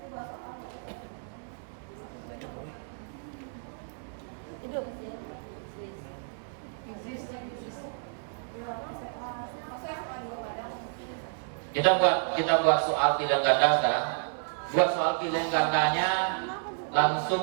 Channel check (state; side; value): silent; left; digital silence